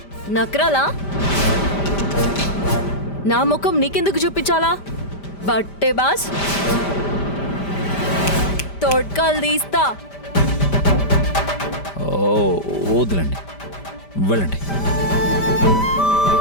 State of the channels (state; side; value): late; right; 5.1 ms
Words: నక్రాలా? నా ముఖం నీకెందుకు చూపించాలా? బట్టే బాస్, తోడ్కాలు తీస్తా. వద్దులండి, వెళ్ళండి.